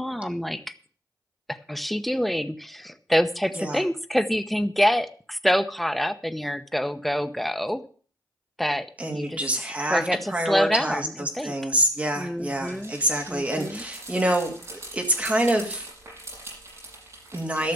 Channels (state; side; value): normal; both; correlation 0.73